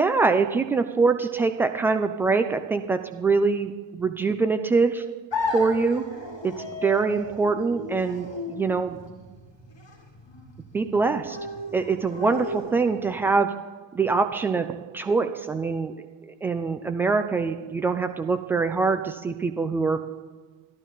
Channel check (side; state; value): left; quieter; 3.7 dB